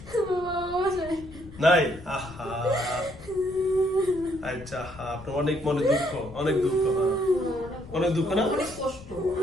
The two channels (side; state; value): left; noise; rumble, 17 dB below the sound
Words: নাই? আহা, আচ্ছা, আপনার অনেক মনে দুঃখ, অনেক দুঃখ, অনেক দুঃখ না? অনেক কষ্ট